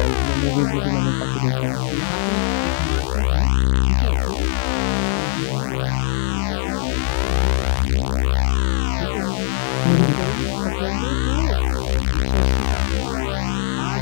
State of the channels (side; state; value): right; silent; digital silence